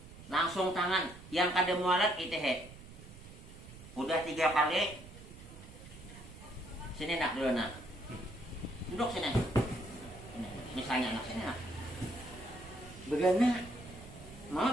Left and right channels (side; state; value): right; noise; rumble, 17 dB below the sound